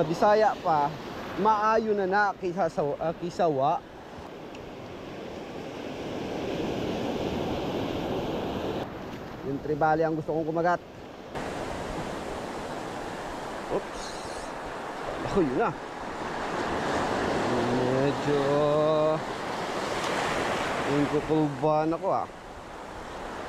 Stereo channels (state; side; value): identical; both; correlation 1.00